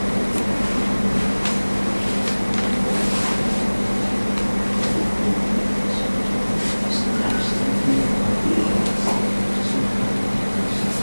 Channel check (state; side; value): inverted; both; correlation -1.00